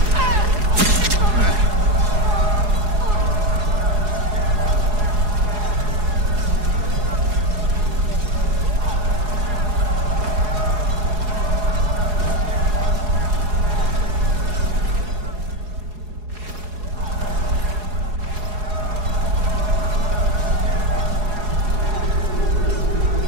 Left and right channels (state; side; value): late; left; 4.8 ms